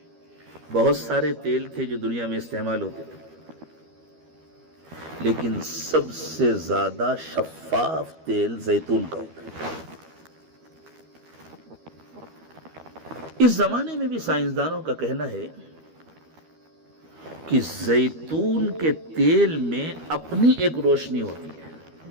بہت سارے تیل تھے جو دنیا میں استعمال ہوتے تھے، لیکن سب سے زیادہ شفاف تیل زیتون کا ہوتا ہے۔ اس زمانے میں بھی سائنسدانوں کا کہنا ہے کہ زیتون کے تیل میں اپنی ایک روشنی ہوتی ہے،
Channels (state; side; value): late; left; 13 ms